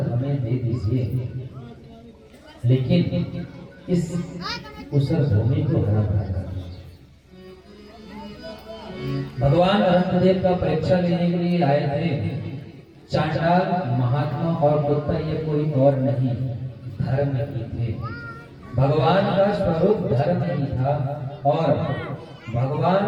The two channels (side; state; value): both; identical; correlation 1.00